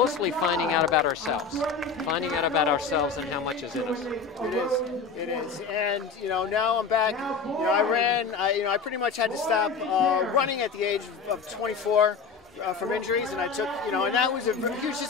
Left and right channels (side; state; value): right; quieter; 5.2 dB